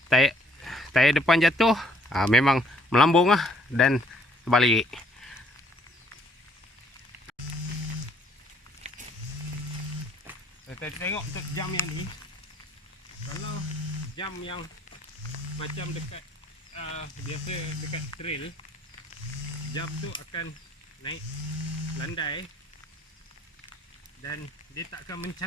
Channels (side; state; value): both; normal; correlation 0.62